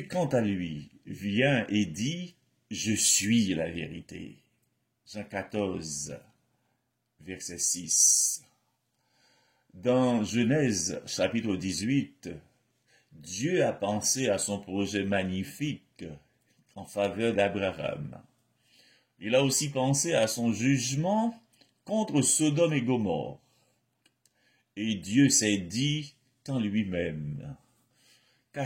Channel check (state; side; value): identical; both; correlation 1.00